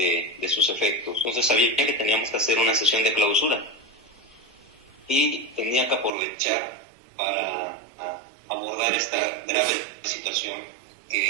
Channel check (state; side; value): drops out; left; at 6.1 s